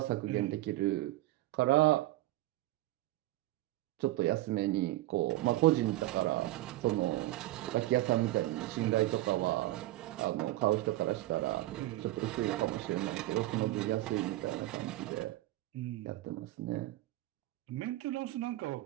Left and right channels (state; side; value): quieter; left; 16.8 dB